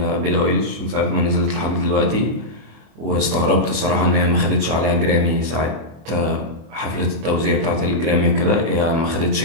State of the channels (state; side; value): late; left; 25 ms